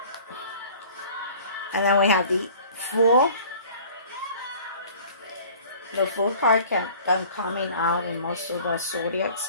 And then we have the Fool. The Fool card kept them coming out in most of the zodiac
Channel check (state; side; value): inverted; both; correlation -0.47